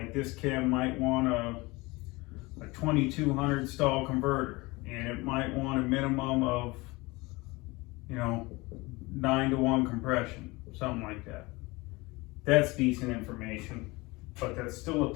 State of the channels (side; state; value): right; quieter; 23.3 dB